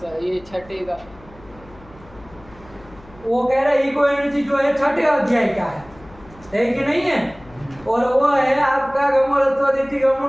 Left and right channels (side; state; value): left; noise; hum, 23 dB below the sound